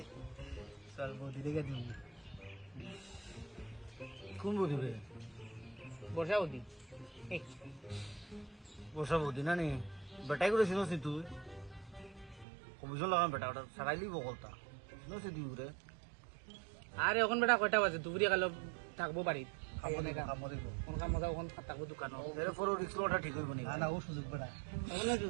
চল বৌদি দেখে দিই কোন বৌদি বে বর্ষা বৌদি বসা বৌদি না নি বেটাই করে চিনস নি তুই কমিশন লাগাম বেটা ওটা সারাইলি বকলতা চিনস দি উরে আরে এখন বেটা কয়টা বাজে দুপুরে গেল থাকবো বাড়িত কাম দিব কোন কাম মজা ওখান থাকবো দোকানও এর পর রিক্স লটা ঠিক হইব নি না ও সুযোগ বেটা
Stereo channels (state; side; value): drops out; left; at 12.5 s